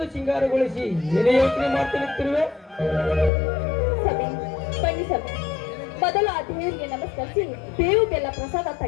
ಸಿಂಗಾರಗೊಳಿಸಿ ಏನೇ ಯೋಚನೆ ಮಾಡ್ತಿರುವೆ? ಬನ್ನಿ ಸಭೆ, ಮೊದಲು ಆ ದೇವರಿಗೆ ನಮಸ್ಕರಿಸಿ ಬೇವು ಬೆಲ್ಲ ಪ್ರಸಾದ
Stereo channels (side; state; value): right; drops out; at 3.3 s